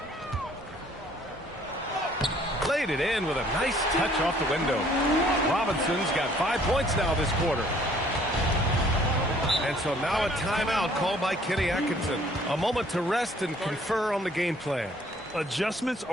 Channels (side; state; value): both; normal; correlation 0.59